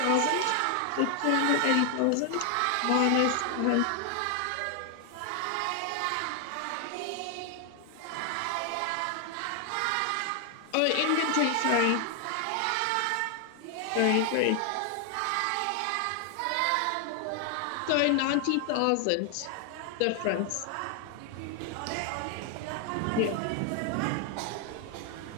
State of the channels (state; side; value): different; both; correlation 0.00